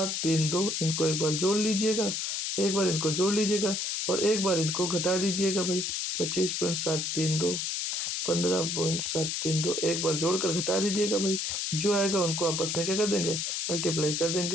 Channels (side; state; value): left; noise; hiss, 1 dB below the sound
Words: इनको एक बार जोड़ लीजिएगा, एक बार इनको जोड़ लीजिएगा, और एक बार इनको घटा दीजिएगा भाई। 25.732 15.732 एक बार जोड़कर घटा दीजिएगा भाई। जो आएगा उनको आपस में क्या कर देंगे? मल्टीप्लाई कर